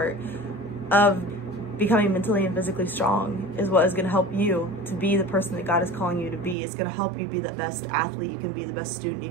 of becoming mentally and physically strong, is what is going to help you to be the person that God is calling you to be. It's going to help you be the best athlete you can be, the best student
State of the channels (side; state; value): left; drops out; at 6.6 s